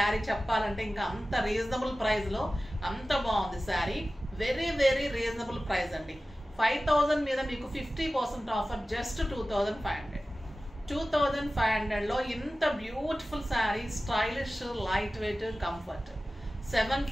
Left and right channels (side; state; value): both; normal; correlation 0.96